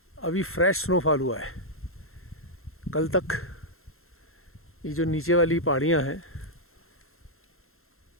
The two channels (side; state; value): right; late; 0.62 ms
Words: अभी फ्रेश स्नोफॉल हुआ है। कल तक ये जो नीचे वाली पहाड़ियाँ हैं,